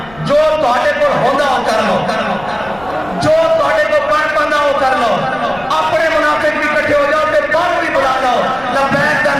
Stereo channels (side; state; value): left; noise; rumble, 21 dB below the sound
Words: جو تواڈے کو ہوندہ ہو کر لو، جو تواڈے کو پڑھ پاندہ ہو کر لو، اپنے منافق بھی کٹھے ہو جاؤ تے بار بھی بلا لو، لبیک کا